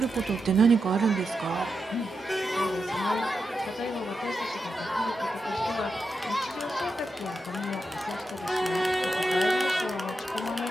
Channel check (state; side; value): normal; both; correlation 0.87